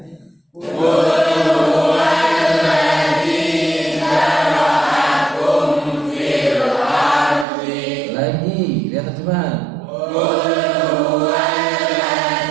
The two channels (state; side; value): drops out; left; at 7.5 s